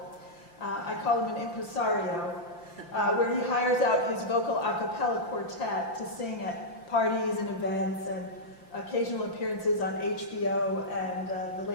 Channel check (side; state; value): right; late; 5.8 ms